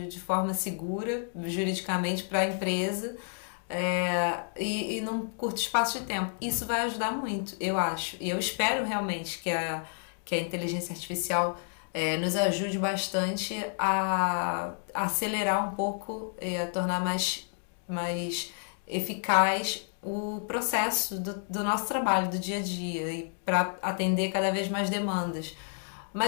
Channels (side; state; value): right; silent; 58 dB below the other